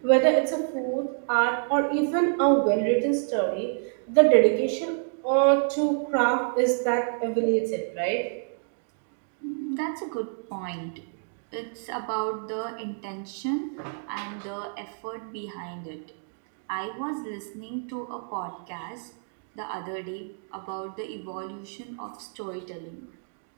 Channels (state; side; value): silent; left; digital silence